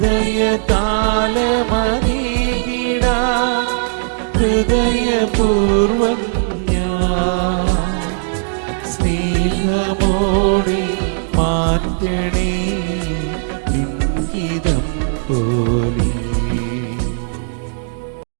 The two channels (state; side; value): silent; left; digital silence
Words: ഹൃദയപൂർവം ഞാൻ സ്നേഹമോടെ മാറ്റണേ നിൻഹിതം പോലെ.